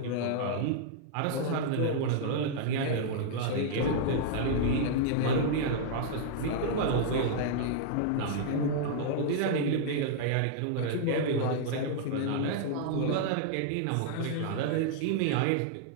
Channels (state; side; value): different; both; correlation -0.01